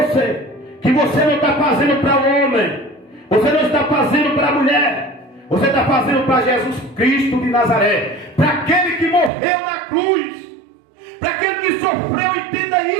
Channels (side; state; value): left; drops out; at 9.3 s